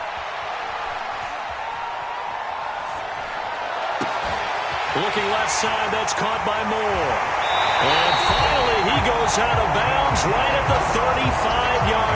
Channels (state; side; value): identical; both; correlation 1.00